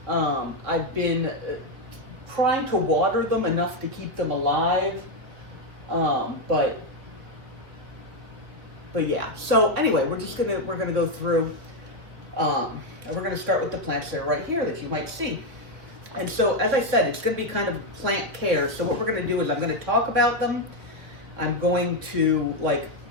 I've been trying to water them enough to keep them alive, but yeah. So anyway, we're gonna go through, and we're gonna start with the plants that are right here that you might see. And so, as I said, it's gonna be kind of plant care. So what we're gonna do is I'm gonna talk about them. I'm going to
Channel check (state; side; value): late; left; 3.5 ms